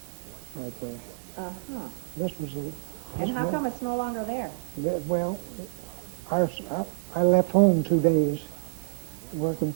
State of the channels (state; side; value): silent; left; 59 dB below the other